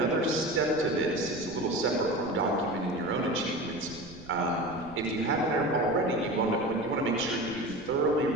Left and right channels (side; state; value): right; noise; rumble, 19 dB below the sound